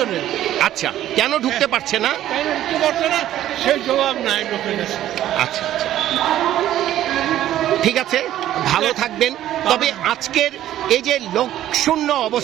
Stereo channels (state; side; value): quieter; left; 12.7 dB